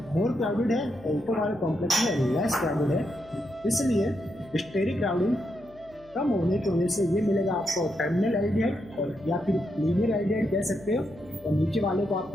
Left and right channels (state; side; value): noise; left; hum, 27 dB below the sound